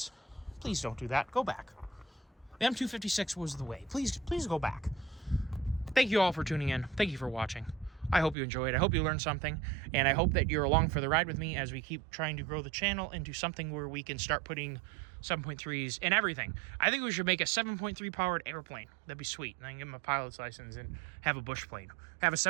don't do that. Go back. The M256 was the way. Please go back. Thank you all for tuning in. Thank you for watching. I hope you enjoyed. I hope you learned something, and I hope that you're along for the ride with me as we keep trying to grow the channel into something where we can start putting 7.3s in everything. I think we should make a 7.3 powered airplane. That'd be sweet. And I can get my pilot's license and have a bush plane. Have a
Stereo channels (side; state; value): left; drops out; at 8.3 s